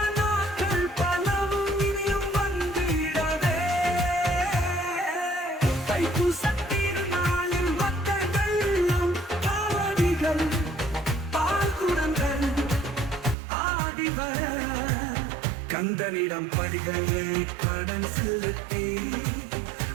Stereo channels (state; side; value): drops out; left; at 13.4 s